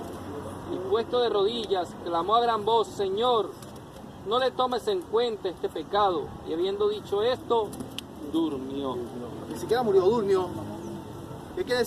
Y puesto de rodillas, clamó a gran voz: Señor, no le tomes en cuenta este pecado. Y habiendo dicho esto, durmió. Ni siquiera murió, durmió. ¿Qué quiere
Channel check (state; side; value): identical; both; correlation 1.00